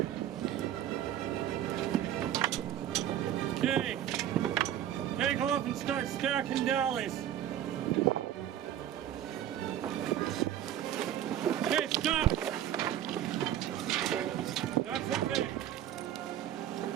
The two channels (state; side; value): quieter; left; 11.2 dB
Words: Okay, take off and start stacking dollies. Okay, stop. That's okay.